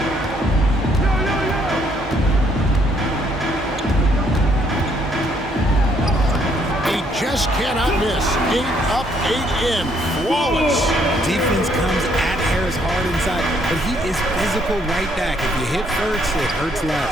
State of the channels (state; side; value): normal; both; correlation 0.69